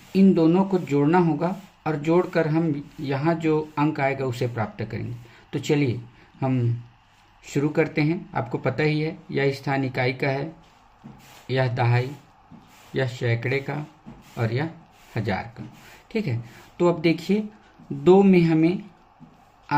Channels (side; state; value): both; identical; correlation 1.00